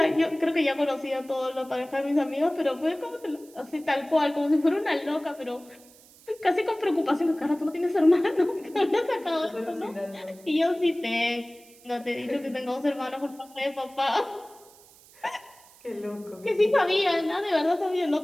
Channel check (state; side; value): noise; right; hiss, 25 dB below the sound